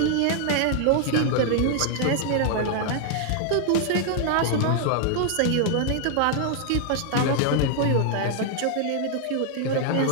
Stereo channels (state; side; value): different; both; correlation 0.00